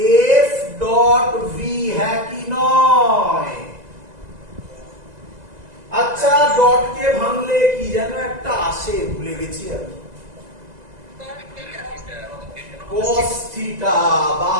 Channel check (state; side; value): late; left; 2.0 ms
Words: F ডট V, হ্যাঁ কি নয়? আচ্ছা ডট কে ভাঙলে কি যেন একটা আসে, ভুলে গেছি আমি, cos থিটা, বা